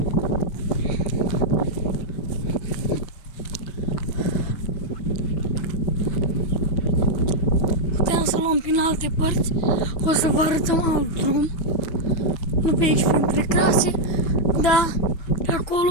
Puteam să luăm prin alte părți, o să vă arătăm alt drum. Nu pe aici, printre crase, dar de acolo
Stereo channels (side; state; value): right; late; 6.1 ms